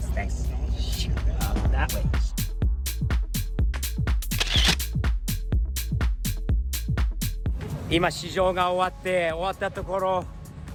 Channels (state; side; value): identical; both; correlation 1.00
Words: Thanks. That way. 今試乗が終わったところ、